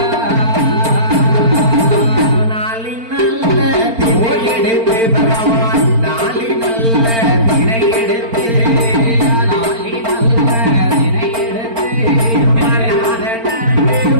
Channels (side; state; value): left; late; 4.4 ms